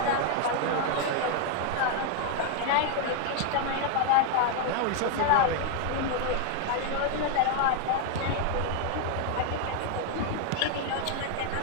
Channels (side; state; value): both; different; correlation 0.00